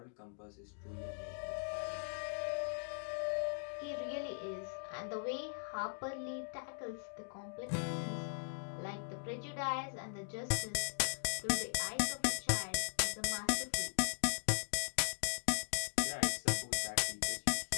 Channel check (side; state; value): right; silent; digital silence